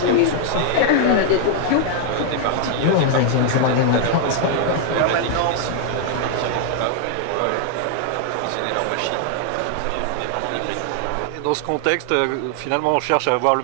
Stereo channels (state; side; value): different; both; correlation 0.00